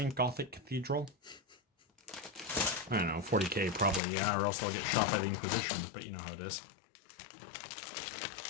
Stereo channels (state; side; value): drops out; right; at 4.0 s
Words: Gothic cathedral? I don't know, 40k probably, yeah, or else I'll get shot by the Inquisition, but you know how it is.